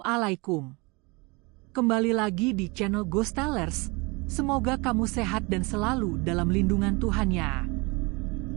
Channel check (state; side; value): quieter; left; 27.4 dB